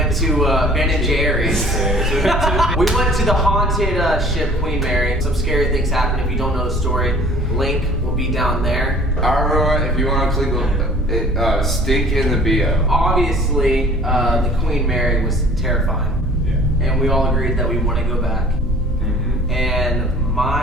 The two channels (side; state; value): both; normal; correlation 0.50